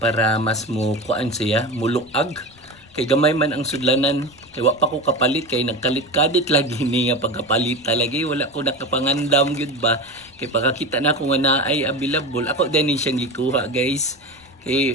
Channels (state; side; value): noise; left; rumble, 28 dB below the sound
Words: mas mo kuan siya muluag kay gamay man ang sudlanan kay wa pa ko kapalit kay nagkalit-kadit lagi ni nga pagkapalit lagi wala ko nakapangandam gyud ba kay pagkakita na ko nga naay available ako din siyang gikuha guys